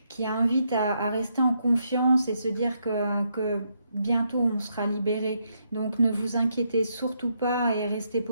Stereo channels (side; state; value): both; inverted; correlation -0.78